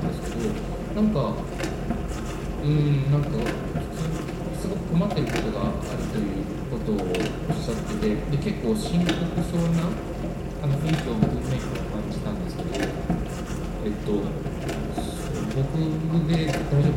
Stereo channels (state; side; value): identical; both; correlation 1.00